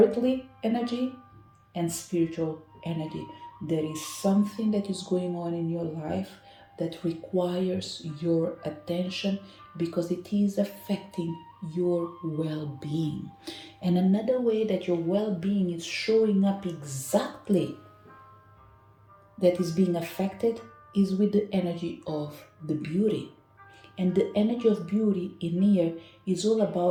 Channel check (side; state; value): both; identical; correlation 1.00